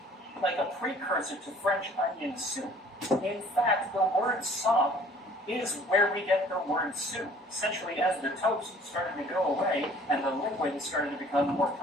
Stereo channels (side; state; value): both; normal; correlation 0.53